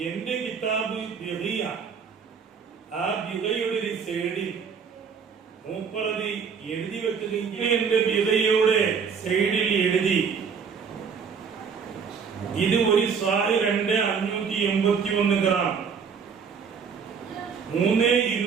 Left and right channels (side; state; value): left; quieter; 6.3 dB